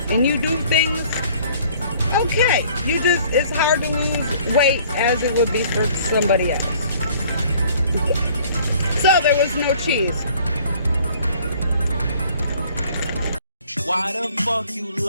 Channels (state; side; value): inverted; both; correlation -0.55